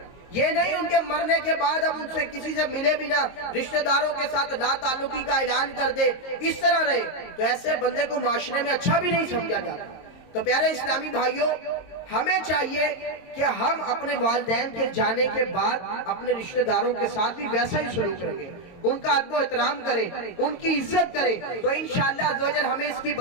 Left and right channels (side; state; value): right; late; 22 ms